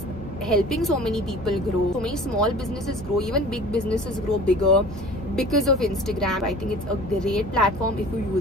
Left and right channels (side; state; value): both; normal; correlation 0.43